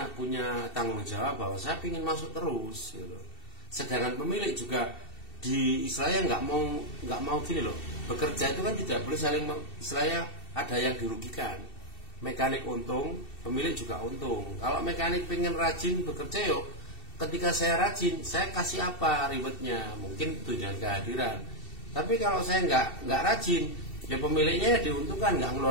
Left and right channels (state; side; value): late; right; 2.7 ms